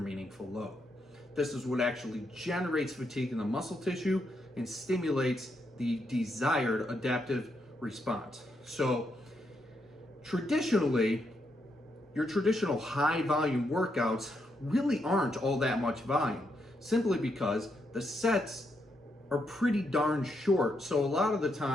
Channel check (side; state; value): both; normal; correlation 0.80